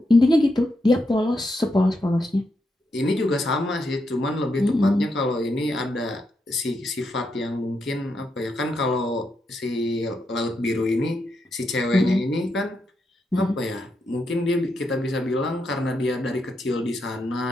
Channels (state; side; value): normal; both; correlation 0.83